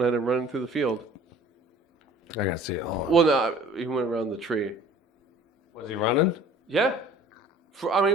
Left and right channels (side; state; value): both; normal; correlation 0.49